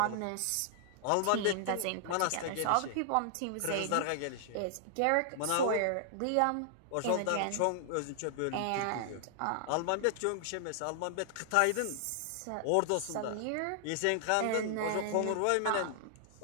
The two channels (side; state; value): both; different; correlation -0.01